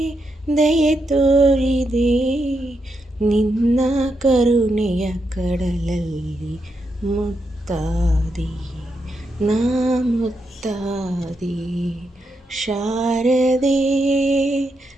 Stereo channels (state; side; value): normal; both; correlation 0.83